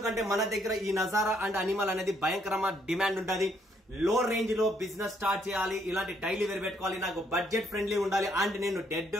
మన దగ్గర ఈ నజారా అండ్ అనిమల్ అనేది భయంకరమైన డిమాండ్ ఉంటుంది. లో రేంజ్ లో బిజినెస్ స్టార్ట్ చేయాలి, ఇలాంటి డైలీ వేర్ పెట్టుకోవాలి, నాకు బడ్జెట్ ఫ్రెండ్లీ ఉండాలి అండ్ నేను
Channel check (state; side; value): normal; both; correlation 0.70